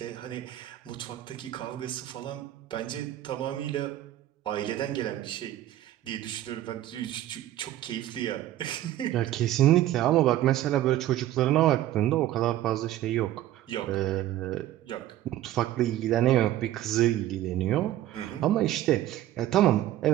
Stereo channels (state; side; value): quieter; left; 13.5 dB